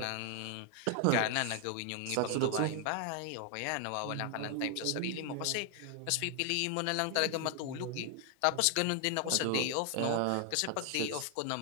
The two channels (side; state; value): both; different; correlation 0.00